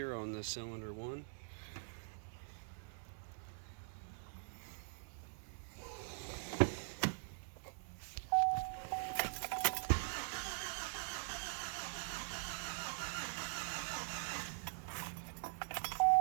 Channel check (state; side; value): silent; left; digital silence